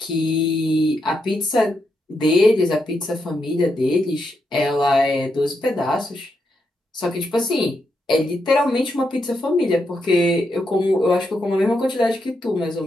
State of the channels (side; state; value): both; normal; correlation 0.82